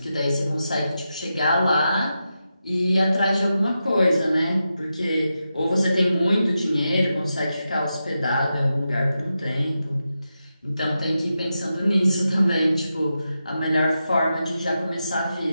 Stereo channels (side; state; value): both; inverted; correlation -0.89